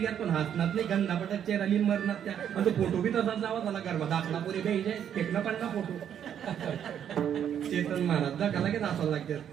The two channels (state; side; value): quieter; left; 9.2 dB